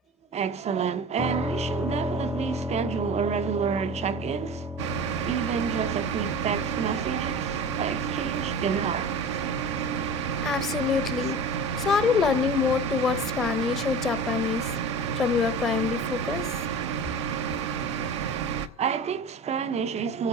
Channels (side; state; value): both; normal; correlation 0.35